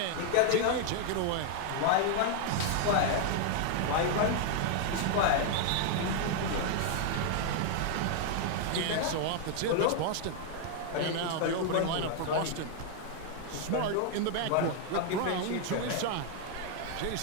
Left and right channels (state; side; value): different; both; correlation 0.00